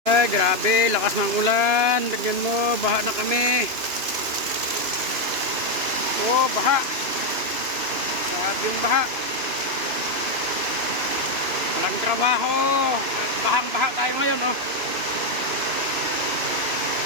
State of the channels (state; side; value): late; left; 2.9 ms